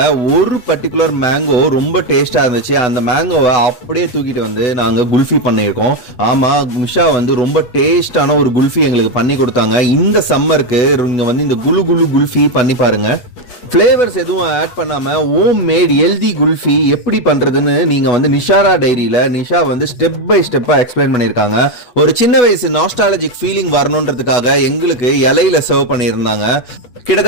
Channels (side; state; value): right; late; 8.4 ms